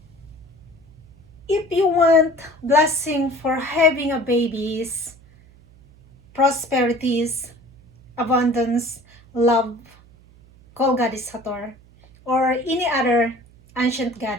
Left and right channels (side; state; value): right; noise; hum, 26 dB below the sound